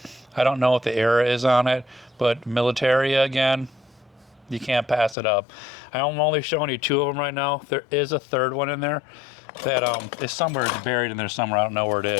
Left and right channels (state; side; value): drops out; right; at 5.2 s